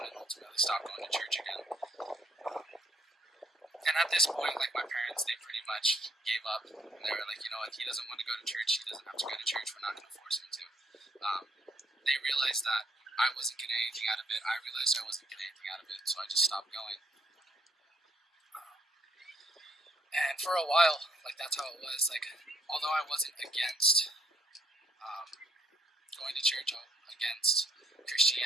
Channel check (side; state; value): both; normal; correlation 0.69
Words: and ultimately stop going to church again. And at this point, my parents, they pretty much gave up. They were like, you know what, he doesn't want to go to church, he doesn't have to go to church, we're not going to force him to. They realized that I wasn't getting anything out of it, I realized I wasn't getting anything out of it, so I just stopped going. And for a while, that's how it was. Although I wasn't against going to church, against